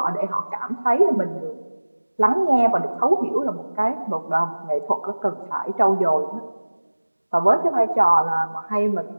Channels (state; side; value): inverted; both; correlation -1.00